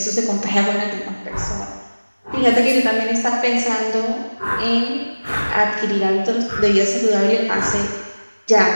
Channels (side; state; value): both; inverted; correlation -1.00